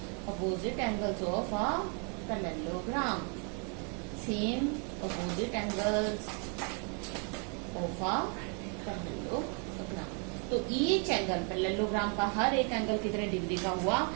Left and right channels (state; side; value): quieter; left; 38.7 dB